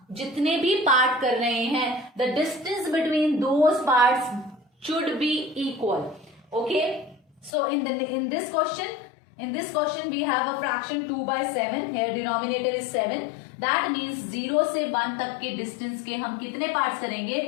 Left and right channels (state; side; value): drops out; right; at 7.5 s